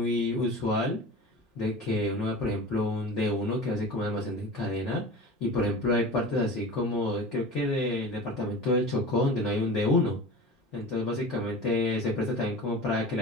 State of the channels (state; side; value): normal; both; correlation 0.35